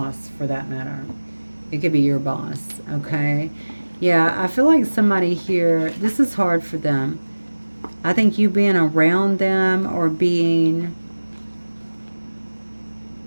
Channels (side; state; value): both; inverted; correlation -1.00